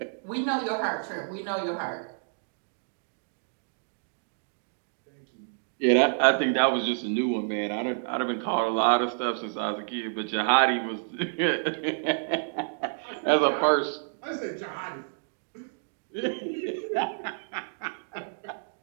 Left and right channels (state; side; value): silent; left; digital silence